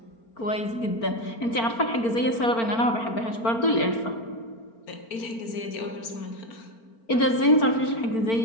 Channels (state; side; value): late; right; 4.4 ms